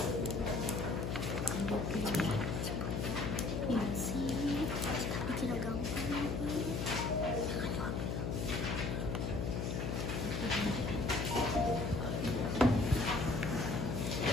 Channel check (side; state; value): left; noise; hum, 1 dB below the sound